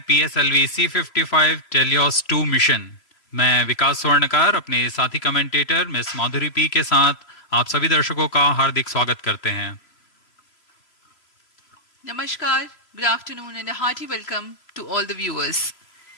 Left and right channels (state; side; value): late; right; 3.0 ms